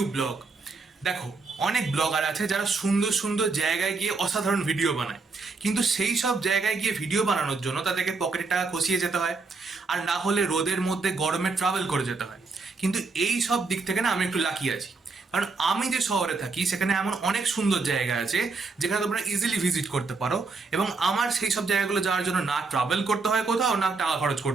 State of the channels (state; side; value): quieter; left; 4.1 dB